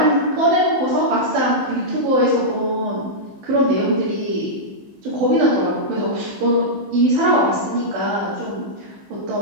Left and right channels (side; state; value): left; late; 15 ms